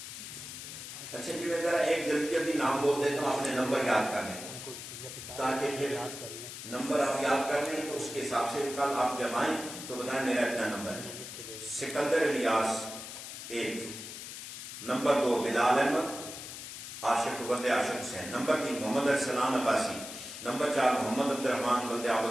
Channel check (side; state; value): left; noise; hiss, 10 dB below the sound